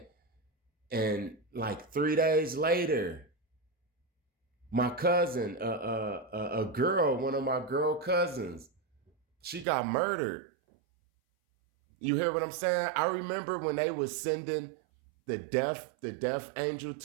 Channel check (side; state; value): left; drops out; at 9.7 s